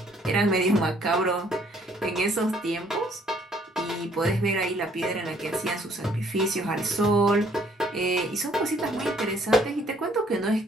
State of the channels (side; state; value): both; normal; correlation 0.63